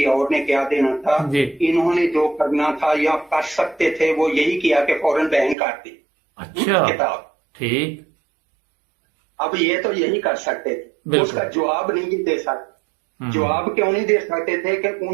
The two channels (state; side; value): drops out; left; at 5.6 s